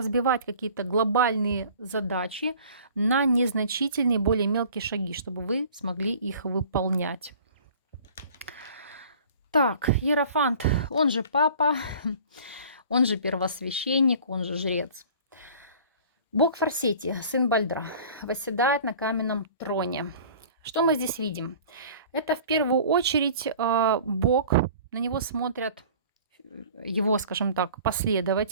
какие-то глобальные задачи на незначительные, более мелкие шаги, чтобы вы смогли их выполнять. Так, Иерофант, он же папа, он же первосвященник, он же жрец. Бог Форсети, сын Бальдра, восседает на каменном троне. Что мы здесь видим? Это в первую очередь Бог, на него смотрят его, скажем так,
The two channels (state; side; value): inverted; both; correlation -0.46